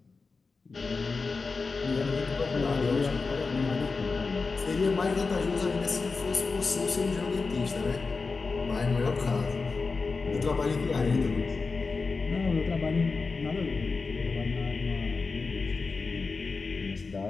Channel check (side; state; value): right; quieter; 4.3 dB